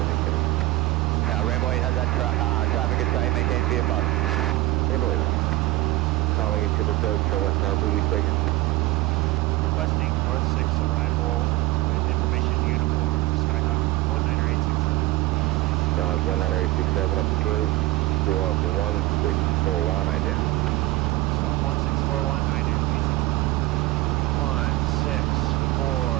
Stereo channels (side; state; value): left; quieter; 18.1 dB